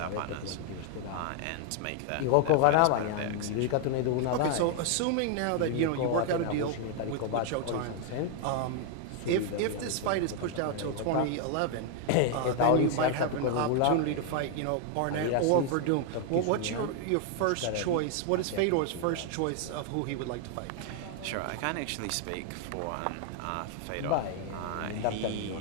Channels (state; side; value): different; both; correlation 0.00